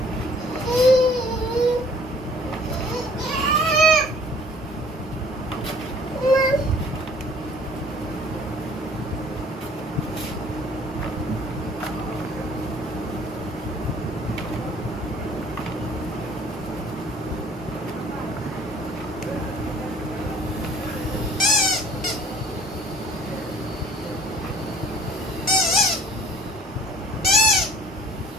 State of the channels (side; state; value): both; normal; correlation 0.53